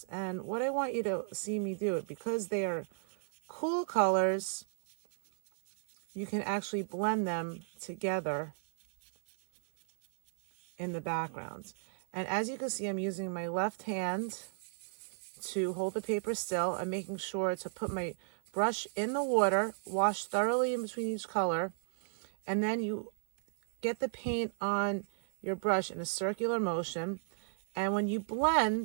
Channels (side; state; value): left; silent; 55 dB below the other